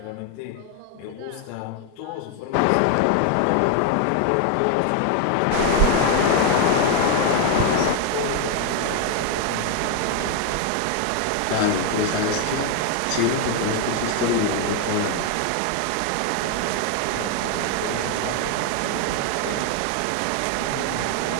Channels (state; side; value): different; both; correlation 0.01